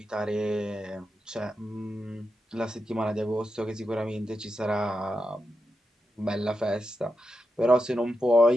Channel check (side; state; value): both; normal; correlation 0.87